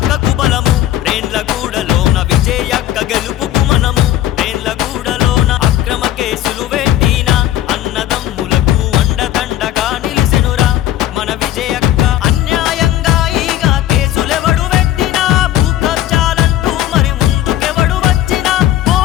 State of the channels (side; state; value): right; quieter; 13.1 dB